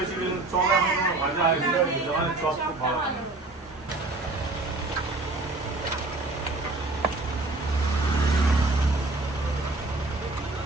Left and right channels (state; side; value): quieter; left; 3.1 dB